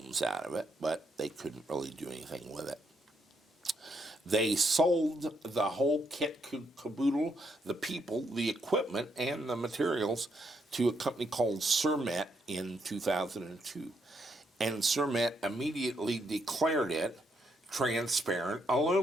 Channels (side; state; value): both; normal; correlation 0.77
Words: out of it, but they couldn't really do anything with it. They sold the whole kit caboodle, the people, the equipment, and the materials to a company called Cermet in 2002. And Cermet immediately declared it transparent